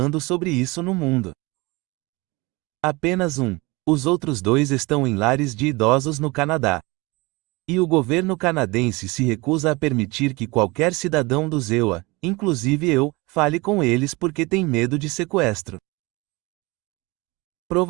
sobre isso no mundo. Apenas um. Os outros 2 estão em lares de idosos no Canadá. E o governo canadense se recusa a permitir que qualquer cidadão dos EUA, inclusive eu, fale com eles porque tem medo de sequestro.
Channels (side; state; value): left; quieter; 24.3 dB